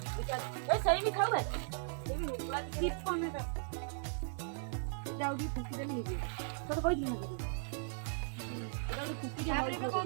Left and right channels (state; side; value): silent; left; 53 dB below the other